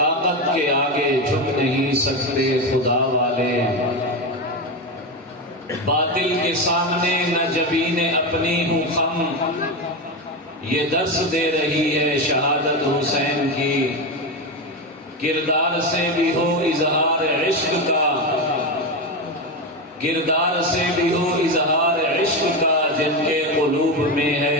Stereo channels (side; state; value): both; normal; correlation 0.15